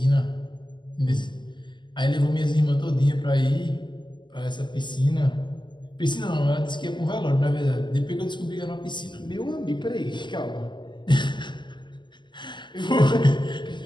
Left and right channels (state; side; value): late; right; 0.22 ms